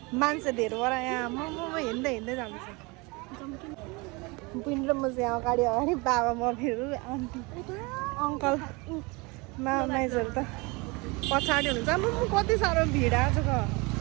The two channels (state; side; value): quieter; left; 26.7 dB